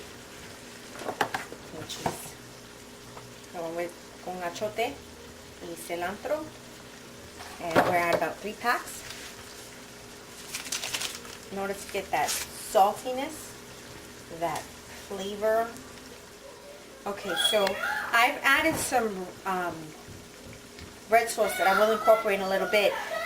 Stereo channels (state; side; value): identical; both; correlation 1.00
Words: which is going with con achote y cilantro. And we're at about 3 packs in order to get that saltiness, that flavor. Okay, so I've added some red sauce that I will incorporate in a little bit,